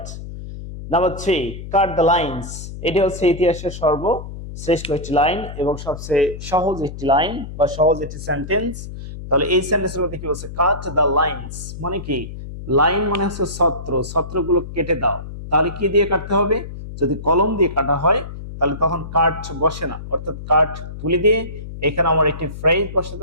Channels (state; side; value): noise; left; hum, 10 dB below the sound